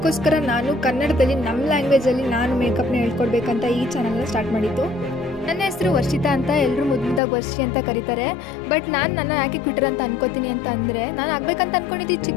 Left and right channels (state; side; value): drops out; right; at 7.2 s